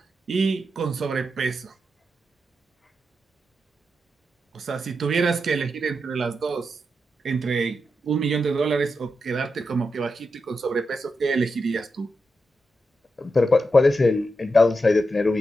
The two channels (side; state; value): both; normal; correlation 0.87